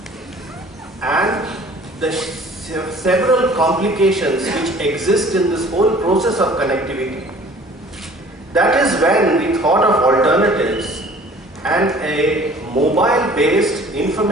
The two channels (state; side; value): normal; both; correlation 0.50